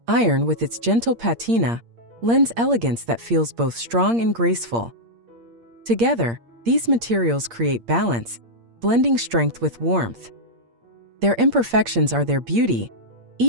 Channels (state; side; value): late; left; 8.6 ms